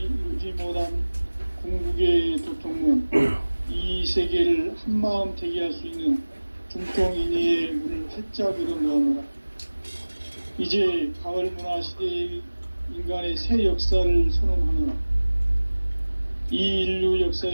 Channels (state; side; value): inverted; both; correlation -1.00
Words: 이루지 못한 궁극의 도통문, 이 세계를 한마음 되게 할 수 있는 중통인의의 문을 활짝 열어놓으노라. 이제 가을 문화 시대의 인간의 새 역사를 선언하노라. 이 인류